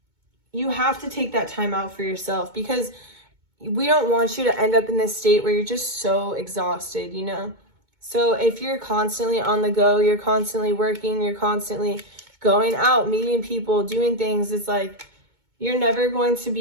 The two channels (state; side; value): late; left; 2.2 ms